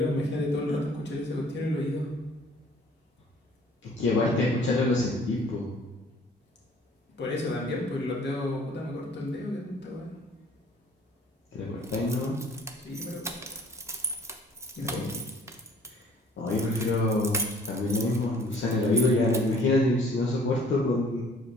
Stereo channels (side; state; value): both; normal; correlation 0.55